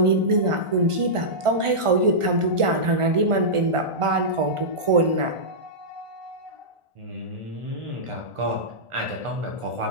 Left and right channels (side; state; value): left; late; 1.4 ms